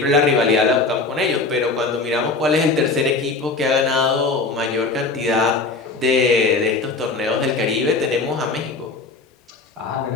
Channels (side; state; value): right; quieter; 3.9 dB